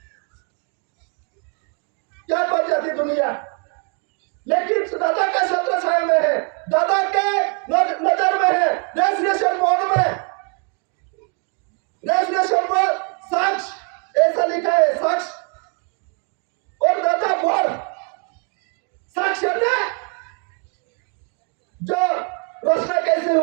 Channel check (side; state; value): left; quieter; 36.3 dB